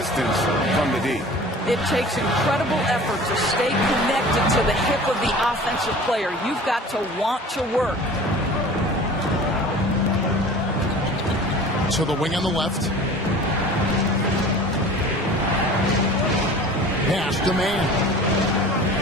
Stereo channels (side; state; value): both; normal; correlation 0.42